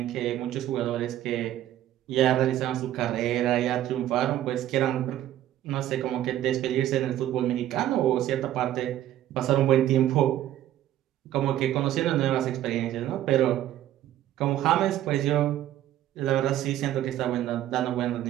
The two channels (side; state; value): left; quieter; 12.7 dB